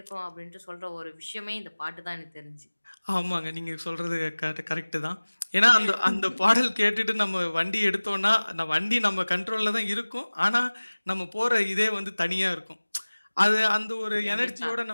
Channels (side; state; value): both; inverted; correlation -1.00